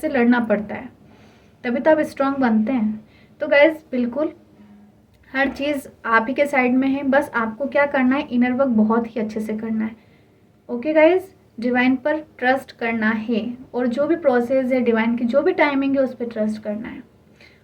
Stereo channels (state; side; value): identical; both; correlation 1.00